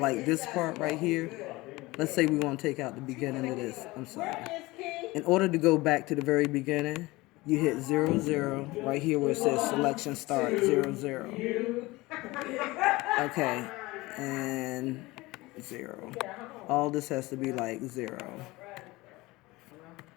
this part right here, let's say we want to take out the beginning of this. I'm sorry. In order to go back to the very beginning, you hit 00 right here where it says selection start 00. Okay, and 0. All this has to be like 0.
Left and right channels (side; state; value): right; quieter; 21.0 dB